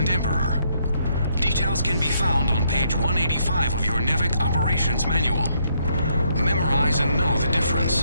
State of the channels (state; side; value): inverted; both; correlation -0.73